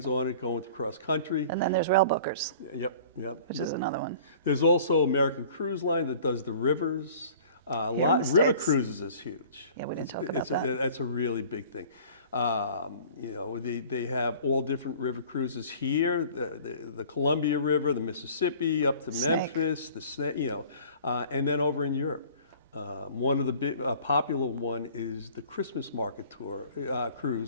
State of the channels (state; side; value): inverted; both; correlation -0.48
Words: on it, going across country. And then there's Rail Bookers. Yep. Which is another one. There's also American Cruise Line that does the rivers. River cruises is huge. Yeah, we didn't talk about that. That's a really big thing. They have all different river cruises here, the Columbia River, the Mississippi, up to Memphis, the Snake, and then over in Europe. One of the big popular one is the Christmas market tour